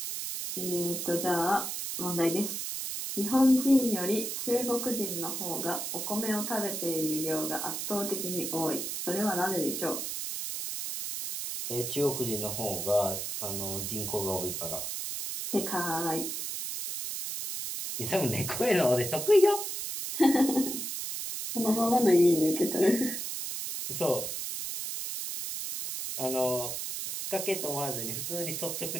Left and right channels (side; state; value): right; noise; hiss, 4 dB below the sound